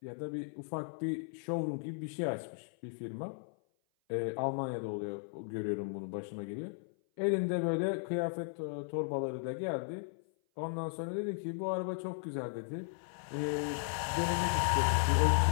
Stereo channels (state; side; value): silent; right; 54 dB below the other